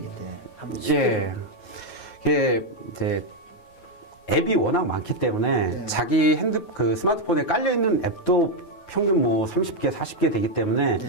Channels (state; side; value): late; right; 9.4 ms